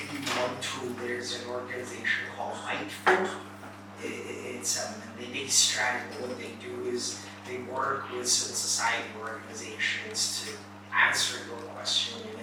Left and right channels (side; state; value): both; identical; correlation 1.00